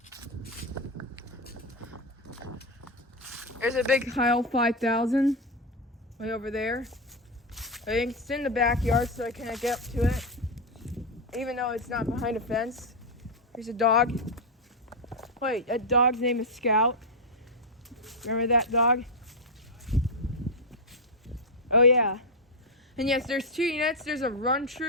There's a big Heil 5000 way over there. I think it's in the backyard, so I can't get up to it, even though it's not behind a fence. There's a dog. Wait, that dog's name is Scout. Remember that dog? Oh yeah. And yes, there's 2 units. There's a Run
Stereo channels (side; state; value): both; normal; correlation 0.04